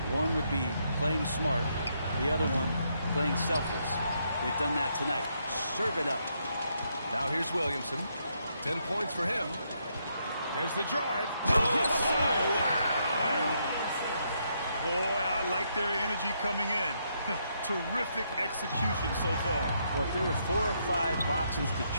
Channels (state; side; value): inverted; both; correlation -0.76